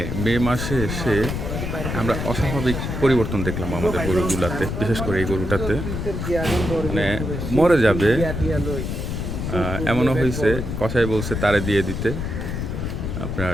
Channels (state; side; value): noise; left; rumble, 4 dB below the sound